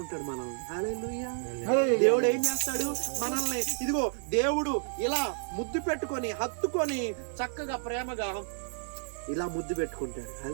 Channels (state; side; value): silent; left; 57 dB below the other